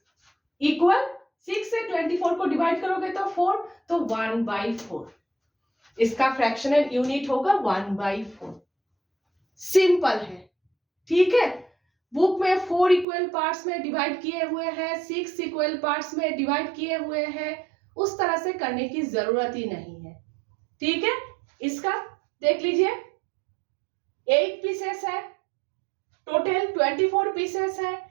इक्वल 6 से 24 को डिवाइड करोगे तो 4, तो 1/4. इसका फ्रैक्शनल यूनिट होगा 1/4. सिंपल है. ठीक है, बुक में 4 इक्वल पार्ट्स में डिवाइड किए हुए हैं, 6 इक्वल पार्ट्स में डिवाइड किए हुए हैं. उस तरह से करने की जरूरत ही नहीं है. ठीक है, इसका देख लीजिए 8 पीसेस है, टोटल 24 पीसेस है.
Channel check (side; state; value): left; drops out; at 13.1 s